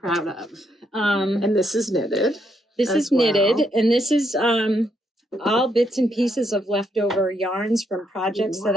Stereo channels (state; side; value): normal; both; correlation 0.76